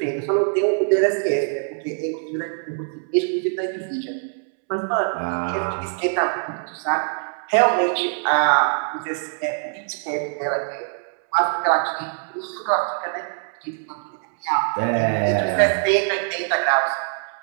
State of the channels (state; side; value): silent; left; 63 dB below the other